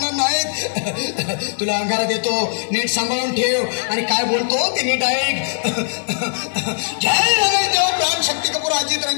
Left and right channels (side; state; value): right; silent; 57 dB below the other